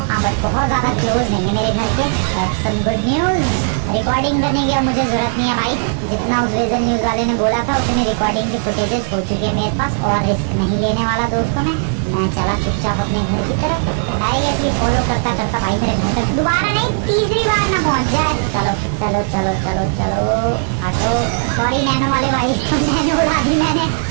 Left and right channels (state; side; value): silent; left; digital silence